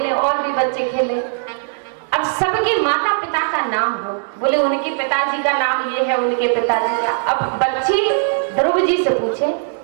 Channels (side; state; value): left; silent; digital silence